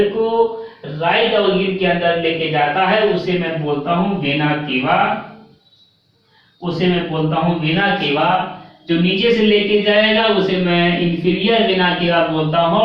को राइट ऑर्गन के अंदर लेके जाता है, उसे मैं बोलता हूं वेना केवा, उसे मैं बोलता हूं वेना केवा। जो नीचे से लेके जाएगा उसे मैं इंफीरियर वेना केवा बोलता हूं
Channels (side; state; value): both; identical; correlation 1.00